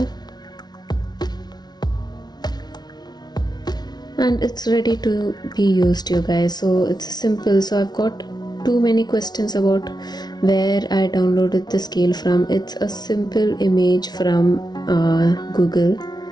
and it's ready to be used, you guys. So it's simple. So I've got too many questions about where I downloaded the scale from. It's a simple image from Google.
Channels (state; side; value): late; right; 0.19 ms